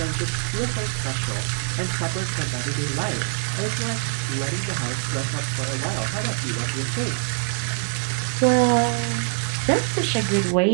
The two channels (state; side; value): silent; left; 63 dB below the other